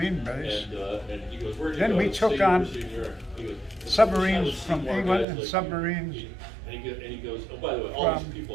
base. Then we took on submarines from England and submarines from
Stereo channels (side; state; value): left; drops out; at 5.2 s